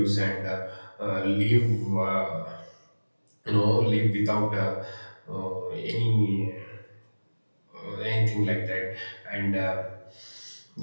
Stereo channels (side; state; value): both; inverted; correlation -1.00